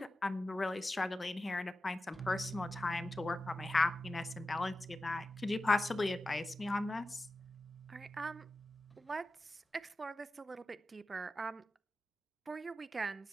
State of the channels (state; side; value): normal; both; correlation 0.93